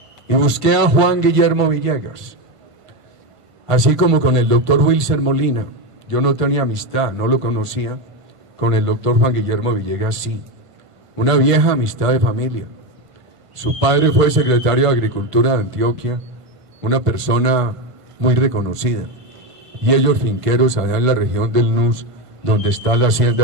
Y busqué a Juan Guillermo Villegas, así como con el doctor Wilson Molina. Yo no tenía amistad, no lo conocía. Con el doctor Juan Guillermo Villegas sí, una vieja amistad de familia. Su padre fue secretario de Agricultura de Antioquia, una persona muy reconocida. Y ellos finqueros allá en la región del Nus, donde está la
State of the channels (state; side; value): late; left; 1.5 ms